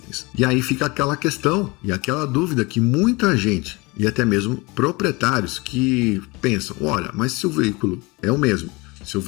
E aí fica aquela questão e aquela dúvida que muita gente, e até mesmo proprietários, que pensam, olha, mas se o veículo é o mesmo, se o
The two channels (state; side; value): quieter; right; 25.1 dB